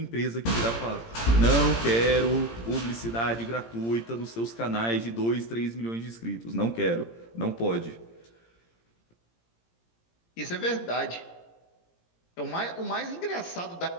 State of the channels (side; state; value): right; late; 17 ms